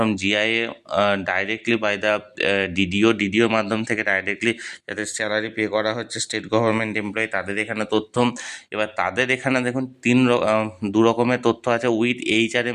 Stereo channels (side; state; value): both; identical; correlation 1.00